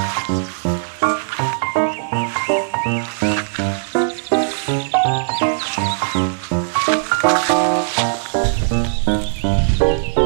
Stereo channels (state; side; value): silent; left; digital silence